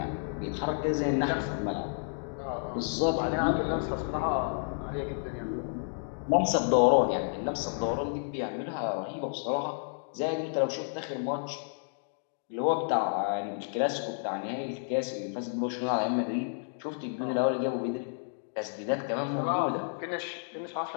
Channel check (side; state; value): right; silent; digital silence